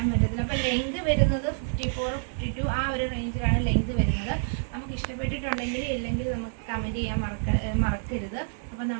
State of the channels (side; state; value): left; silent; 56 dB below the other